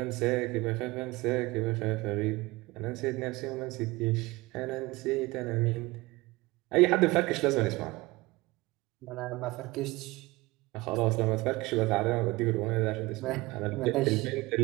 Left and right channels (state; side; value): quieter; left; 21.6 dB